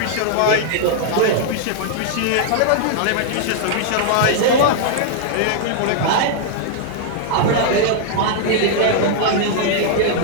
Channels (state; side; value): different; both; correlation -0.01